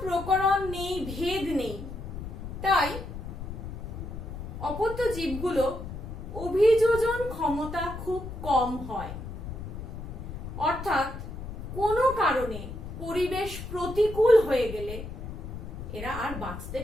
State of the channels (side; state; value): left; noise; rumble, 9 dB below the sound